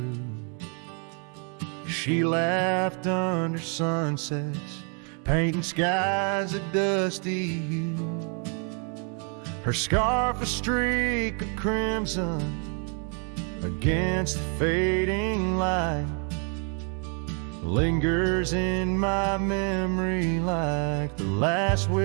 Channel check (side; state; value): left; quieter; 38.9 dB